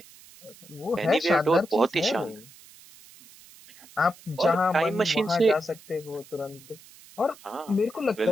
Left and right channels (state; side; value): noise; right; hiss, 22 dB below the sound